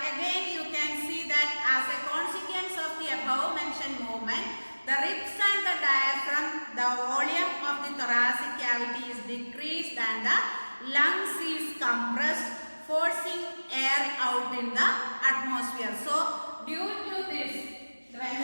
you can see that as a consequence of the above mentioned movement, the ribs and the diaphragm, the volume of the thoracic cavity is decreased and the lungs is compressed, forcing air out in the atmosphere. So due to this, when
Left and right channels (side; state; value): both; inverted; correlation -1.00